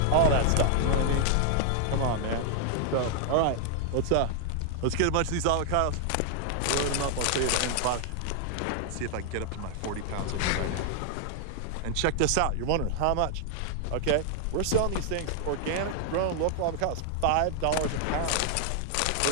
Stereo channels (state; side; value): different; both; correlation 0.00